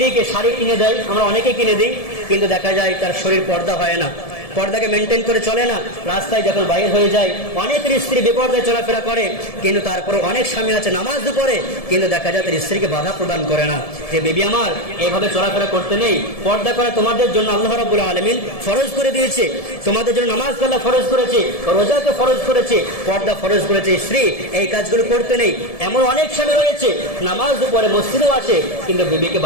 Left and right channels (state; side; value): late; right; 1.7 ms